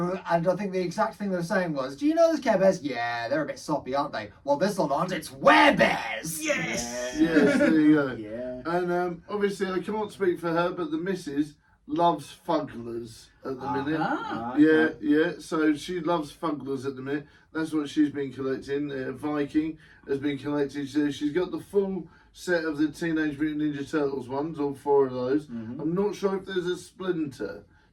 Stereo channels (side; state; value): both; identical; correlation 1.00